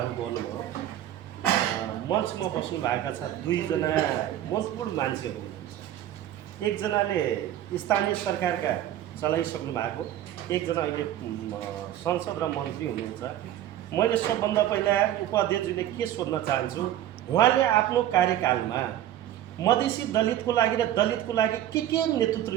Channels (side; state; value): left; quieter; 12.3 dB